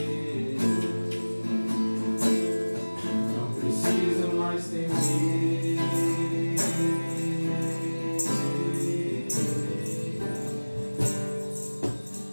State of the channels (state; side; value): inverted; both; correlation -1.00